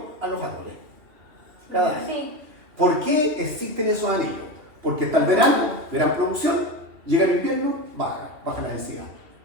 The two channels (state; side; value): late; left; 2.8 ms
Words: a los árboles. Cada año. Sí. ¿Por qué existen esos anillos? Porque está el verano, gran producción, llega el invierno, baja la densidad.